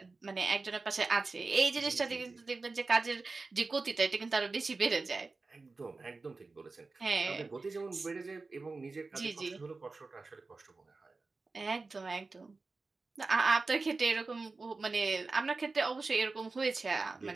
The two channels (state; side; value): quieter; left; 3.8 dB